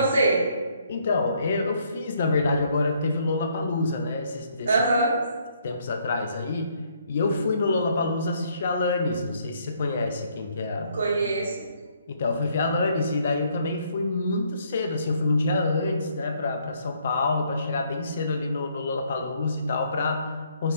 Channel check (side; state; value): both; inverted; correlation -0.68